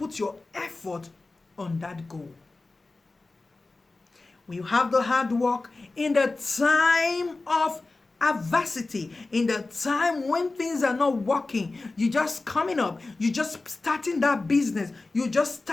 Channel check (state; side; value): quieter; right; 3.4 dB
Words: your effort on that goal. When you have the hard work in the time of adversity, in the time when things are not working, you just coming up, you just starting that business, you just